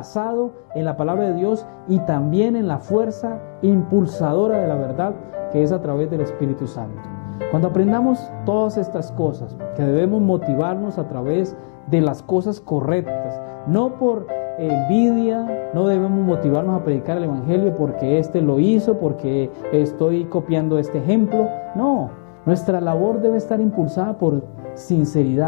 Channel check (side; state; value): right; silent; digital silence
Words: en la palabra de Dios y también en la fuerza impulsadora de la verdad que es a través del Espíritu Santo. Cuando aprendamos todas estas cosas, que debemos motivarnos a través de las cosas correctas, no por envidia, no debemos motivarnos a predicar el Evangelio porque este lo hizo, porque estoy copiando este ejemplo. No, nuestra labor debe estar impulsada por